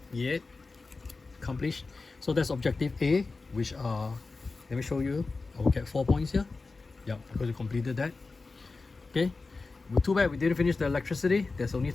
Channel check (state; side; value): quieter; right; 3.9 dB